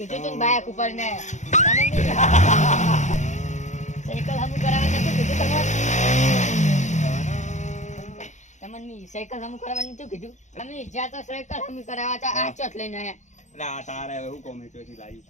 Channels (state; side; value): late; right; 0.34 ms